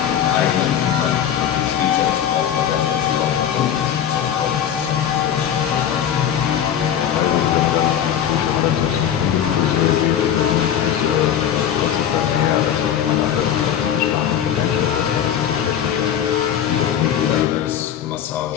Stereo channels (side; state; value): right; quieter; 9.5 dB